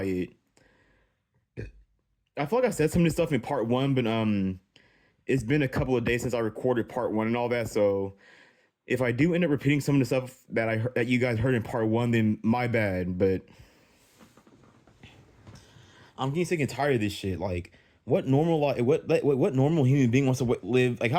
I feel like I said some of this stuff in part one, but it's been a couple of days since I recorded part one and all that, so if I do end up repeating some of the stuff that you guys heard in part one, then my bad. But I'm getting sick and tired of this shit. Like, what normal human being wants to live? Like, I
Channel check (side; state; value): both; identical; correlation 1.00